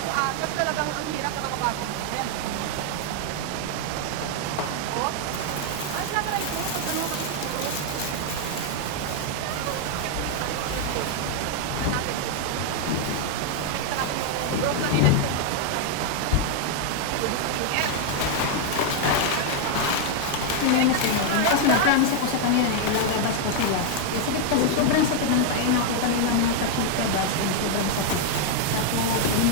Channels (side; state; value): both; different; correlation 0.00